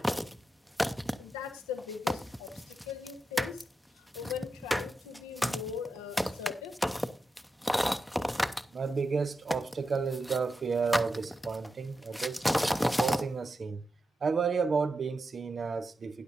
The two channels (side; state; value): both; normal; correlation 0.89